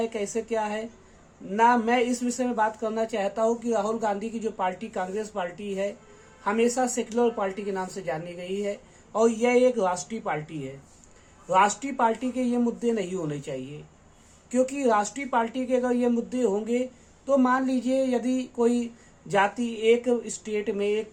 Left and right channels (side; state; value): both; identical; correlation 1.00